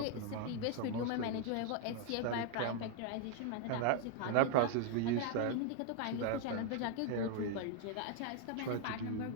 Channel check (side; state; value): both; different; correlation 0.00